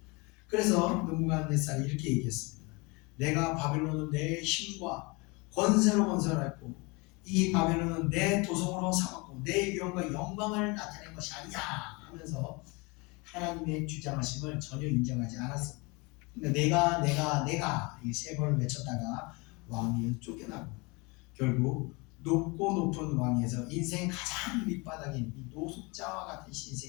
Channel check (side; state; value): right; quieter; 27.5 dB